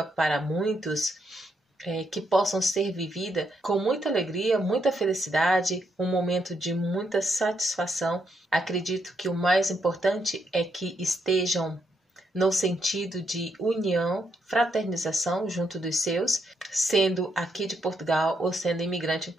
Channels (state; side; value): normal; both; correlation 0.78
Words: para muitos, que possam ser vivida com muita alegria, muita felicidade, um momento de muita satisfação. Acredito que o mais importante é que estejam no sentido de união, fraternização junto dos seus, sendo aqui de Portugal ou sendo imigrante em